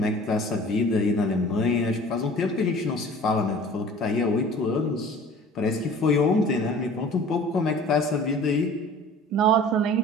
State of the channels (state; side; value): normal; both; correlation 0.45